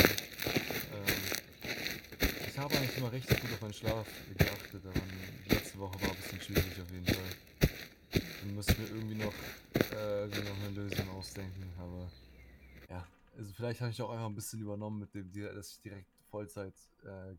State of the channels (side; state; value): both; identical; correlation 1.00